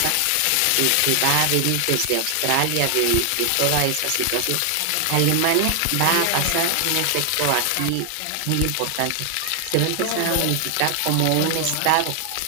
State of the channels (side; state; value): both; different; correlation 0.00